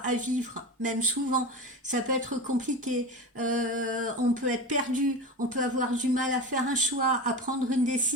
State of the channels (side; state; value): both; normal; correlation 0.25